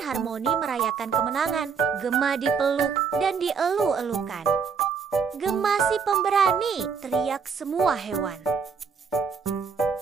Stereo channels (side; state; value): left; quieter; 6.0 dB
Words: merayakan kemenangan. Gema dipeluk dan dielu-elukan. "Gema si pemberani!" teriak semua hewan.